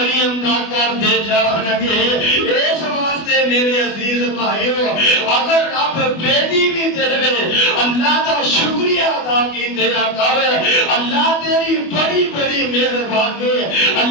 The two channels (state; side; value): late; right; 24 ms